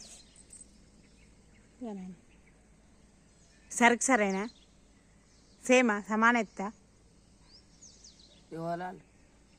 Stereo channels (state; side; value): identical; both; correlation 1.00